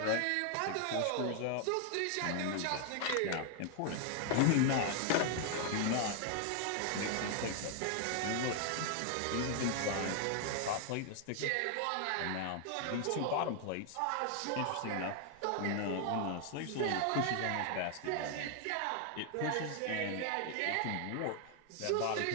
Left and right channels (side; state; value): both; different; correlation 0.00